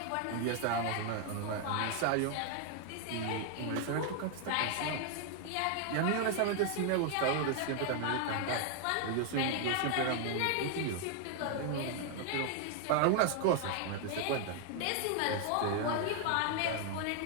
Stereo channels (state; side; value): different; both; correlation 0.00